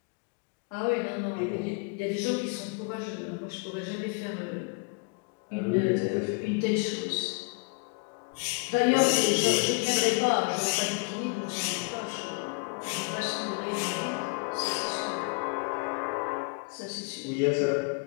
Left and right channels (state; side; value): quieter; right; 33.2 dB